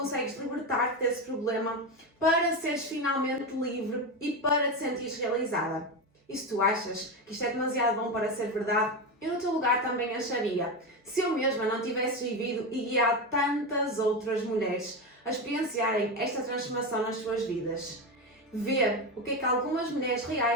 libertar-te desse problema para seres finalmente livre e para te sentires realizada. E se tu achas que isto é demasiado bom para ser verdade, eu no teu lugar também acharia. Se eu mesma não tivesse vivido e guiado tantas outras mulheres a experienciarem esta transformação nas suas vidas. Ver o que é que algumas mulheres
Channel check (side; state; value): both; normal; correlation 0.16